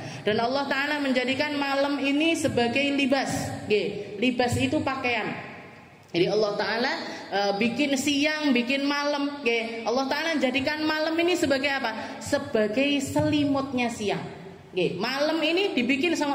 Dan Allah Ta'ala menjadikan malam ini sebagai libas. Libas itu pakaian. Jadi Allah Ta'ala bikin siang, bikin malam. Allah Ta'ala jadikan malam ini sebagai apa? Sebagai selimutnya siang. Malam ini dibikin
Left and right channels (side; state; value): both; identical; correlation 1.00